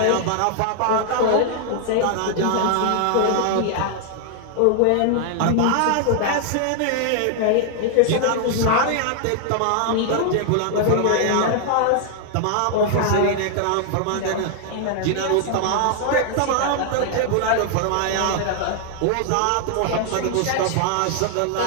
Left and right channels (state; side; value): different; both; correlation 0.00